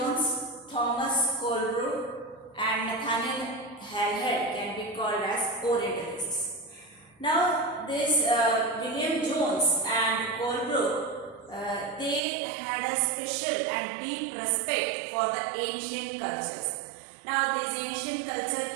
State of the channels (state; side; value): drops out; left; at 12.2 s